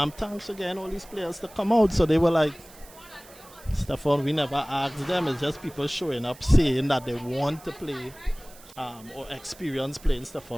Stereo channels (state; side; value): noise; right; hiss, 22 dB below the sound